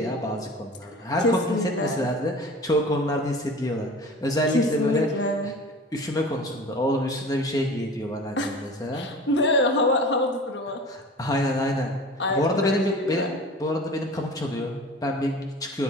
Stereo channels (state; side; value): normal; both; correlation 0.39